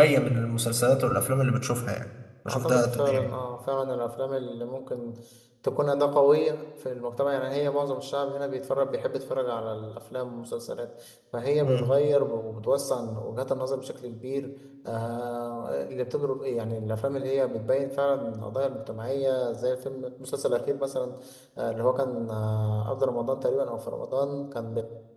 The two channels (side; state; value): both; identical; correlation 1.00